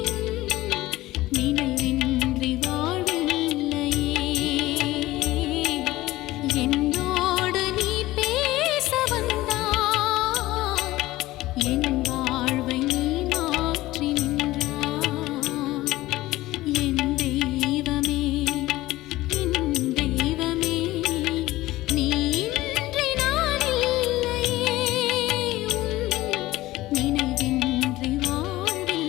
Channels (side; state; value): right; quieter; 17.5 dB